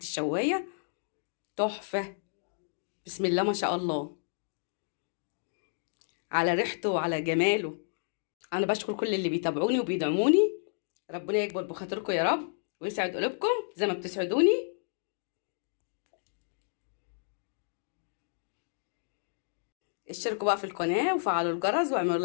الشوايه. تحفه، بسم الله ما شاء الله على ريحته وعلى جماله. انا بشكر كل اللي بيتابعوني وبيدعموني، ربنا يكبر بخاطركم يا رب ويسعد قلوبكم زي ما بتسعدوني. اشتركوا بقى في القناة وفعلوا الجرس واعملوا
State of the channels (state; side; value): silent; right; digital silence